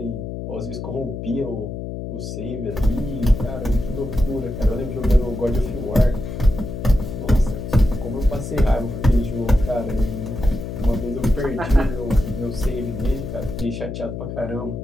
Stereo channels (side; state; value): left; noise; hum, 7 dB below the sound